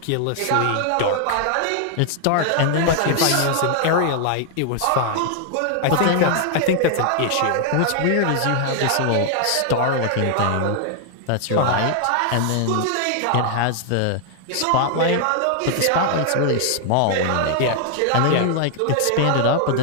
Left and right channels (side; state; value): both; different; correlation 0.00